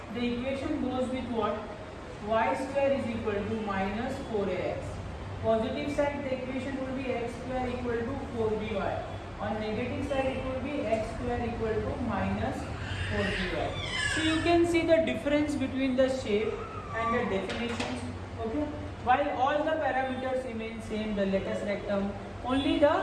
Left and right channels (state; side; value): identical; both; correlation 1.00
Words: the equation goes with what? Y square is equal to minus 4ax. Positive side, the equation will be x square equal to 4by. On negative side, it will be x square equal to minus 4by. So you can see the difference between the shape and the definitions. Okay. While all the parameters remain same, the lattice rectum, only the